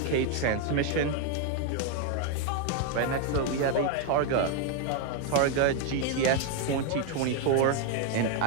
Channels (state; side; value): different; both; correlation 0.01